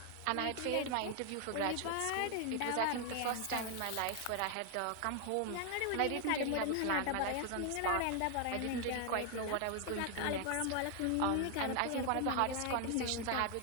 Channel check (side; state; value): both; different; correlation 0.00